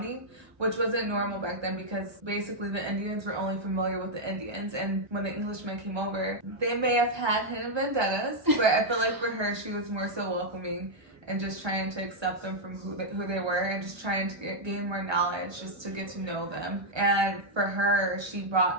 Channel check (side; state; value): left; late; 1.2 ms